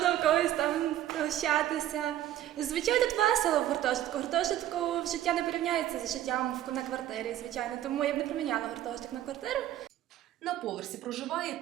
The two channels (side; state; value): left; quieter; 12.6 dB